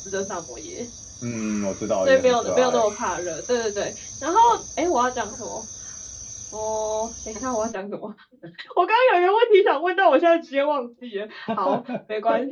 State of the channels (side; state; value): both; identical; correlation 1.00